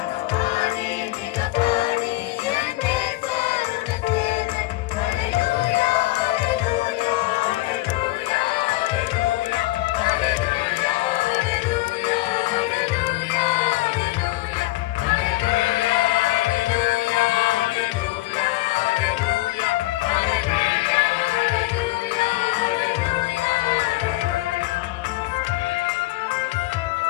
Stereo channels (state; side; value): quieter; right; 19.8 dB